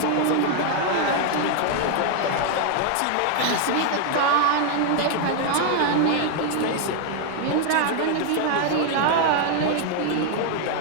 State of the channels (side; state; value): both; different; correlation 0.00